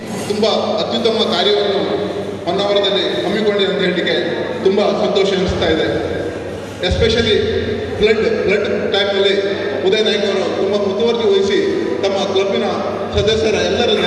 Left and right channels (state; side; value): identical; both; correlation 1.00